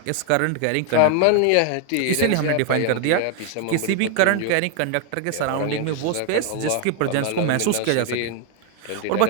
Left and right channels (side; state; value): both; different; correlation 0.01